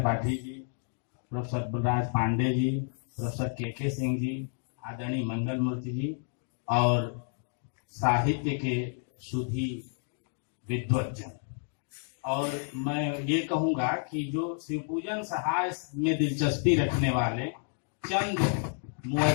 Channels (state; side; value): silent; right; 56 dB below the other